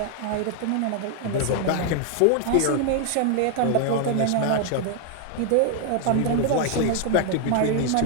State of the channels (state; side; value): different; both; correlation 0.00